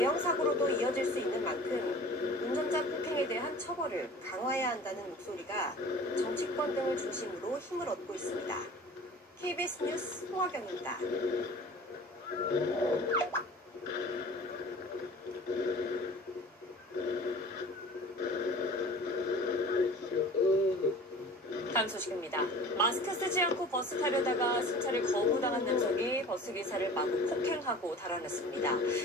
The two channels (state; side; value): normal; both; correlation 0.42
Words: 사고로도 이어질 수 있는 만큼 운전자 폭행에 대한 처벌을 강화해야 한다는 목소리가 정치권 등을 중심으로 힘을 얻고 있습니다. KBS 뉴스 홍화경입니다. 다음 소식입니다. 마스크 쓰지 않고 버스 타려다가 승차를 거부당한 남성이 버스기사를 마구 폭행하고 달아났습니다.